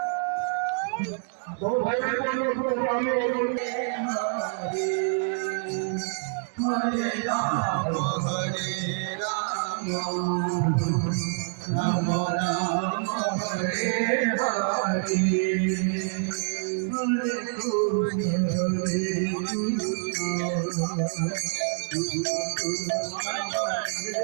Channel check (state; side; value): silent; left; 60 dB below the other